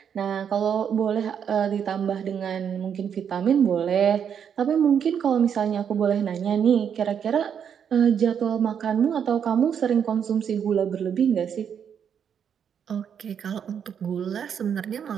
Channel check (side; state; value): left; quieter; 8.0 dB